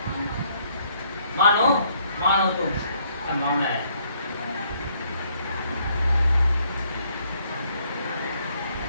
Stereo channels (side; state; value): both; inverted; correlation -0.68